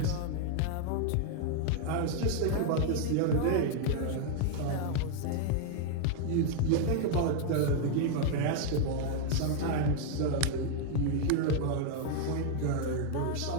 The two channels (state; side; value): different; both; correlation 0.00